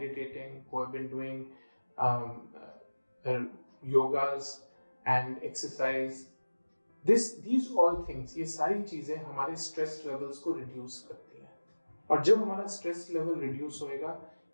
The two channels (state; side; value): inverted; both; correlation -1.00